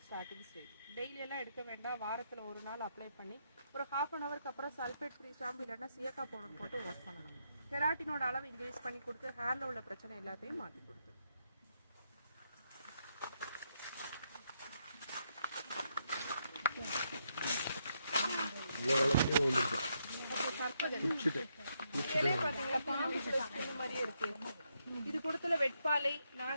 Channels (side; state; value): both; inverted; correlation -0.78